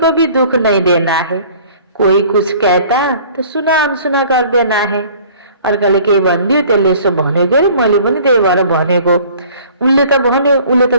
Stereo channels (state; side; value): inverted; both; correlation -0.50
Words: भी दुख नहीं देना है। कोई कुछ कहता तो सुना अनसुना कर देना है। अर्काले केही भनिदियो त्यसले यसो भनेको अरे मैले पनि त्यही भएर भनेको, उनले त भन्यो, उसले